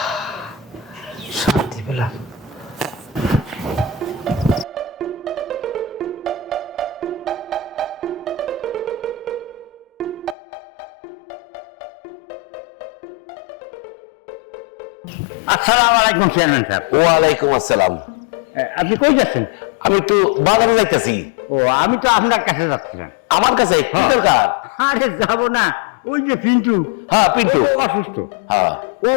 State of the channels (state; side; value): drops out; right; at 10.4 s